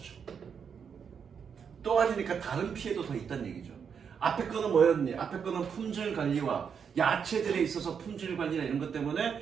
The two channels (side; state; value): left; quieter; 6.9 dB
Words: 또 아니니까 다른 피해도 더 있다는 얘기죠. 앞에 거는 뭐였니? 앞에 거는 품질 관리와 야채들에 있어서 품질 관리나 이런 것 때문에